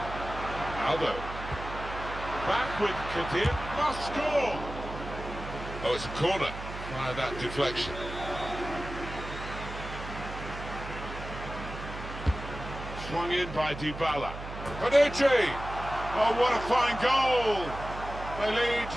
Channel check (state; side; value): noise; right; hum, 10 dB below the sound